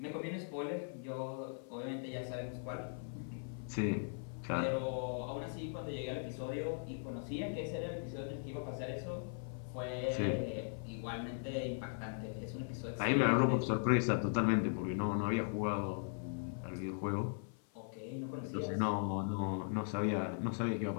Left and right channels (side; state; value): right; silent; 52 dB below the other